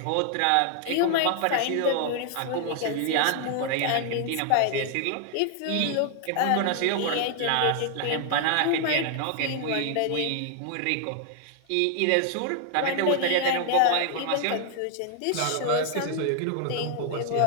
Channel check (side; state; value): both; different; correlation 0.00